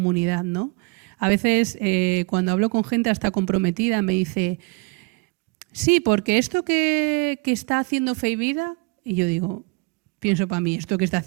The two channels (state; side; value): quieter; left; 28.5 dB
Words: ¿no? A veces cuando hablo con gente hasta comprometida me dice, sí, porque esto que está haciendo Fe y Vida, y yo digo, pienso para mí, esto que está